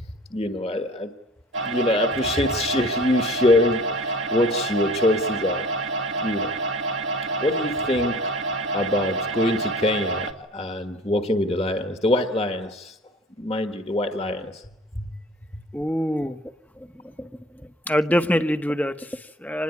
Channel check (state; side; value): normal; both; correlation 0.46